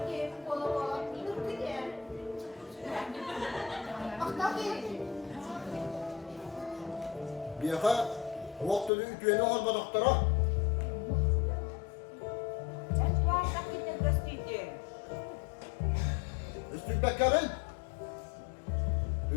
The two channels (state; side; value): drops out; right; at 8.9 s